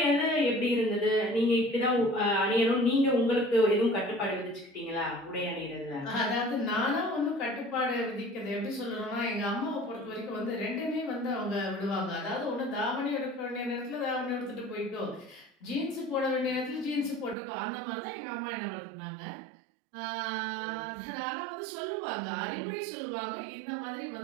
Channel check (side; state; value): left; drops out; at 17.4 s